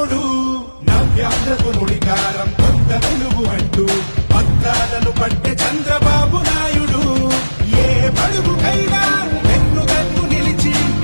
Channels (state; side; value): inverted; both; correlation -1.00